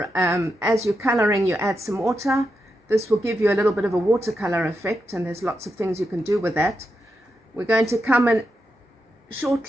as you're coloring you add some water. This will give you a little bit of a watercolor effect, and there's lots of things you can do with that. We're going to come in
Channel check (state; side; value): normal; both; correlation 0.86